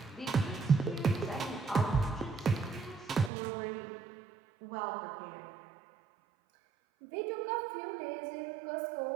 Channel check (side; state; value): left; drops out; at 3.3 s